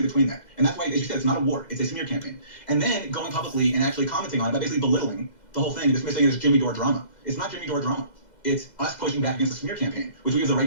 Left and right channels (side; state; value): right; late; 2.0 ms